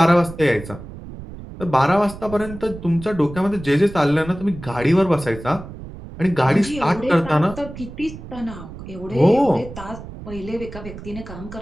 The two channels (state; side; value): noise; right; rumble, 13 dB below the sound